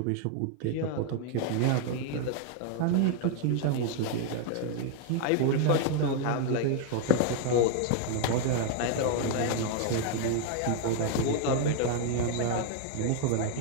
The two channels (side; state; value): both; different; correlation 0.00